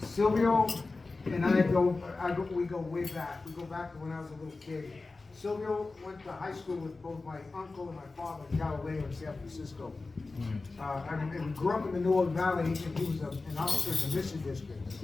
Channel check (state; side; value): quieter; right; 3.6 dB